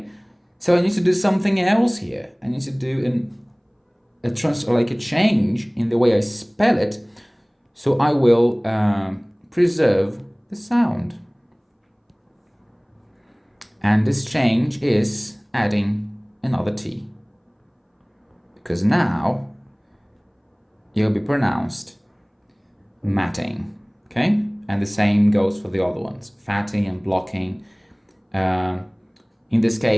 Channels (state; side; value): identical; both; correlation 1.00